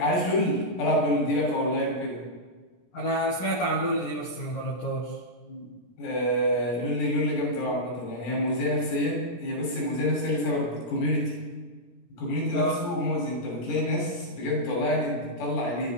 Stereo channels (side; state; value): right; late; 17 ms